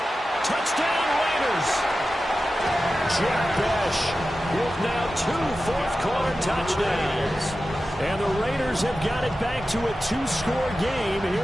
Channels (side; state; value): both; normal; correlation 0.93